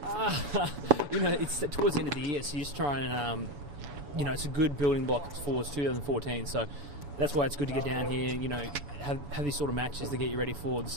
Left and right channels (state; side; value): late; left; 7.1 ms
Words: It's towards the end of the year, so you just try and, it's a good building block for 2014. So that's why it's good to get down here, have these sort of matches to get you ready for the